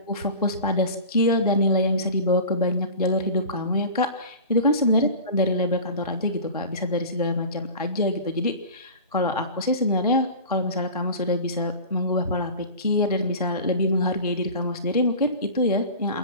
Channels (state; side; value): inverted; both; correlation -0.36